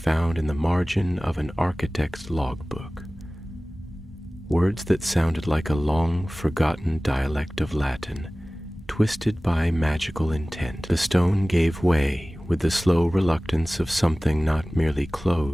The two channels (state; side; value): normal; both; correlation 0.98